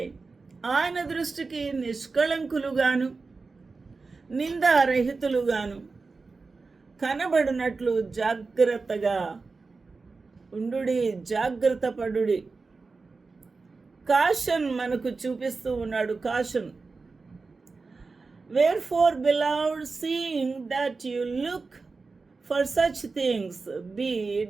ఆయన దృష్టికి నిష్కళంకులుగాను, నిందారహితులుగాను కనబడినట్లు జాగ్రత్తగా ఉండుడి, జాగ్రత్త పడుడి. కాషన్ మనకు చూపిస్తూ ఉన్నాడు. Caution, wherefore beloved, seeing that you look for such things, be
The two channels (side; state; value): left; quieter; 4.1 dB